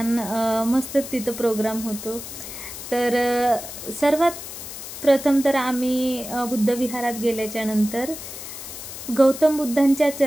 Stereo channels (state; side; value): noise; left; hiss, 10 dB below the sound